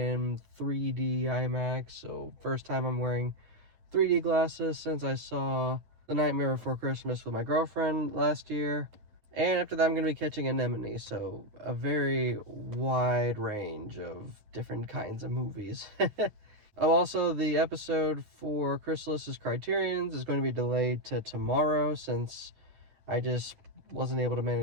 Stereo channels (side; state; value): left; late; 9.8 ms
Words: 3D IMAX. So first time I'm wearing 3D glasses since I saw The Nightmare Before Christmas with my girlfriend last year. And after that, I'm going to be catching Anemone. So a very wide range of different kinds of movies. Oh, also, the episode for Chrysalis's Criterions is going to be delayed to tomorrow since I just wasn't able to